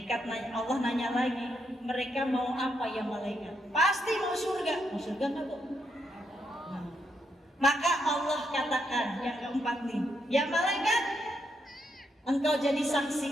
nanya, Allah nanya lagi, mereka mau apa ya malaikat? Pasti mau surga. Mau surga nggak, Bu? Nah, maka Allah katakan yang keempat nih, ya malaikat, engkau jadi saksi.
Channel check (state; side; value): normal; both; correlation 0.79